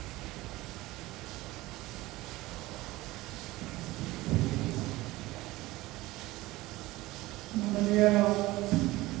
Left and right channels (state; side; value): quieter; left; 18.9 dB